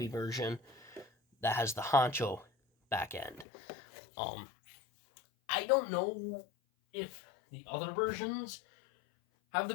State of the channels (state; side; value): drops out; right; at 3.5 s